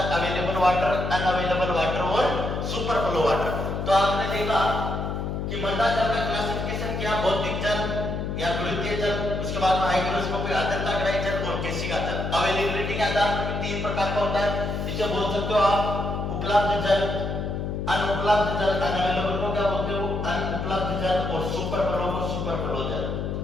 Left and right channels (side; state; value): left; noise; hum, 3 dB below the sound